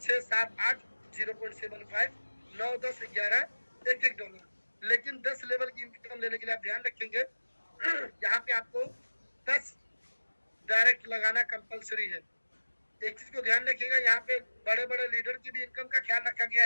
6 7 8 0.75, 9 10 11 $1। लेकिन 10 लेवल की इनकम लेने के लिए आप ध्यान रखेंगे यहाँ पे आपको 10 डायरेक्ट लगाना कंपलसरी है। एक चीज को ध्यान रखिएगा, यहाँ पे बड़े बड़े लीडर की भी इनकम का ख्याल रखा गया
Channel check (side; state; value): both; inverted; correlation -1.00